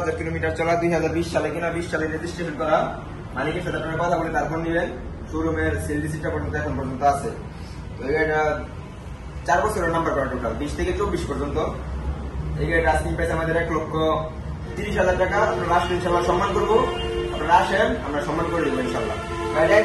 কিলোমিটার চলা, 2020 সালে কিনা, 20 সালে রেজিস্ট্রেশন করা। মালিকের সাথে আপনারা কথা বলে তারপর নিবেন। শোরুমের সেল রিসিপ্টটা পর্যন্ত এখন পর্যন্ত আছে। তো এই গাড়িটা 4 বছরের নাম্বার করা, টোটাল 20 থেকে 24 পর্যন্ত। এই গাড়িটা আস্কিং প্রাইস আমাদের 1,30,000 টাকা। আপনারা আসলে ইনশাল্লাহ সম্মান করবো। আপনারা আসেন, আমরা সম্মান করে দেবো ইনশাল্লাহ। গাড়িটা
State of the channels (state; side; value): identical; both; correlation 1.00